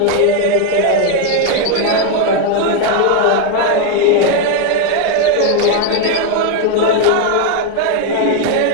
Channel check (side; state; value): both; different; correlation 0.01